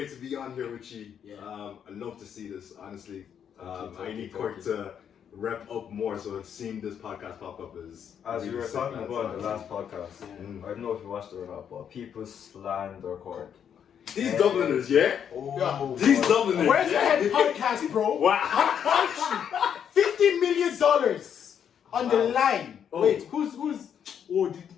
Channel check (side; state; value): right; quieter; 8.4 dB